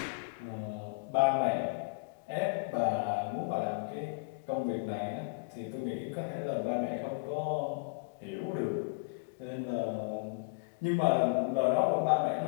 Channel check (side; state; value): right; quieter; 32.5 dB